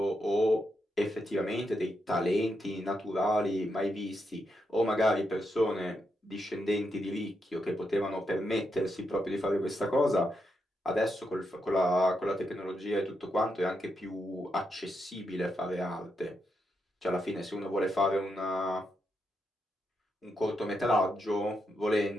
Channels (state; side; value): normal; both; correlation 0.82